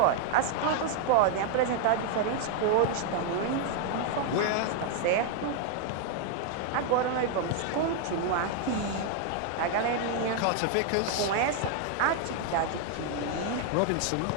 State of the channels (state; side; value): different; both; correlation 0.00